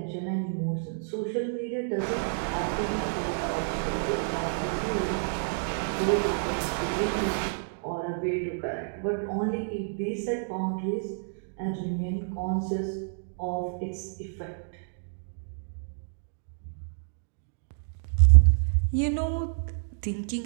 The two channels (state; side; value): silent; left; digital silence